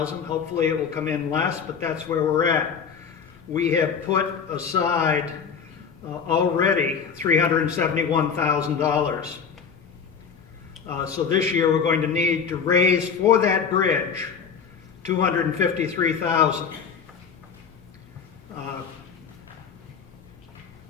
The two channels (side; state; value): right; quieter; 6.6 dB